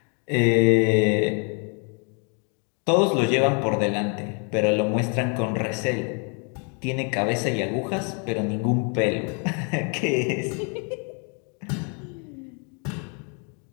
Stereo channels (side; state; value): right; quieter; 37.8 dB